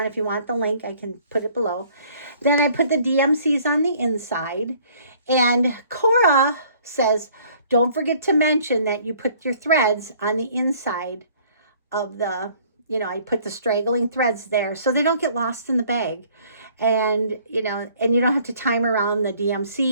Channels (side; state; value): both; inverted; correlation -0.57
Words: If you want the link, I can put it below. Then I put the DMCs on the inside, and Cora says, don't forget to mention that you put your threads on the inside of the, you know, I put the straggling threads there so they don't get lost in the bag. And, you know, and you don't have to time around the